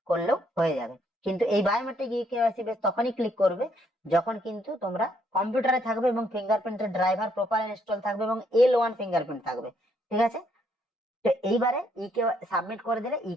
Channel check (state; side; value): normal; both; correlation 0.70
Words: করলেও হয়ে যাবে। কিন্তু এই বায়োমেট্রিক ইকেওয়াইসি বেস তখনই ক্লিক করবে যখন কিন্তু তোমরা কম্পিউটারে থাকবে এবং ফিঙ্গারপ্রিন্টের ড্রাইভার প্রপার ইনস্টল থাকবে এবং L1 ফিঙ্গারপ্রিন্ট থাকবে, ঠিক আছে। তো এইবারে সাবমিট করে দিলে